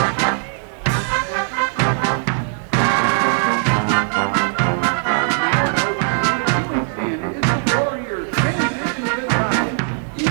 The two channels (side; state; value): left; silent; digital silence